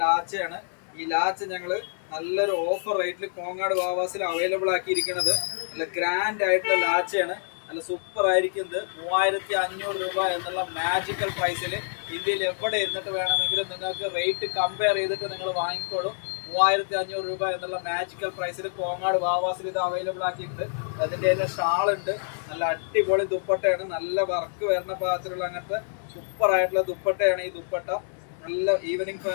ലാച്ചയാണ്. ഈ ലാച്ച ഞങ്ങൾ നല്ലൊരു ഓഫർ റേറ്റിൽ കോങ്ങാട് വാവാസിൽ അവൈലബിൾ ആക്കിയിരിക്കുന്നത്. നല്ല ഗ്രാൻഡ് ആയിട്ടുള്ള ലാച്ചയാണ്, നല്ല സൂപ്പർ ആയിരിക്കുന്നത്. 3500 രൂപ എന്നുള്ള മാജിക്കൽ പ്രൈസിൽ ഇന്ത്യയിൽ എവിടെ ഇരുന്നിട്ട് വേണമെങ്കിലും നിങ്ങൾക്ക് റേറ്റ് കമ്പയർ ചെയ്തിട്ട് നിങ്ങൾ വാങ്ങിക്കോളൂ. 3500 രൂപ എന്നുള്ള മാജിക്കൽ പ്രൈസിൽ കോങ്ങാട് വാവാസിൽ ഇത് അവൈലബിൾ ആക്കിയിട്ടുണ്ട്. അതിൻ്റെ തന്നെ ഷാളുണ്ട്, നല്ല അടിപൊളി ദുപ്പട്ടയാണ്, നല്ല വർക്ക് വരുന്ന പാകത്തിലുള്ള അങ്ങനത്തെ സൂപ്പർ ആയിട്ടുള്ള ദുപ്പട്ടയാണ് ഈ ദുപ്പട്ട. നല്ല ഈവനിങ്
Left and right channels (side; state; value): right; silent; digital silence